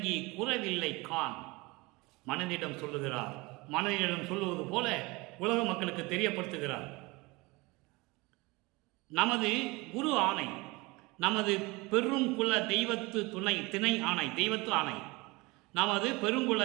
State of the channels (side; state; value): left; quieter; 23.9 dB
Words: குறவில்லை கான். மனதிடம் சொல்லுகிறார். மனதிடம் சொல்லுவது போல உலக மக்களுக்கு தெரியப்படுத்துகிறார். நமது குரு ஆணை, நமது பெருங்குல தெய்வத்து திணை ஆணை, தெய்வத்து ஆணை, நமது பெருங்குல